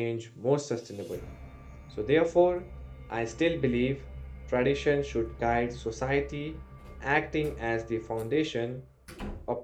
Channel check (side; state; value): both; identical; correlation 1.00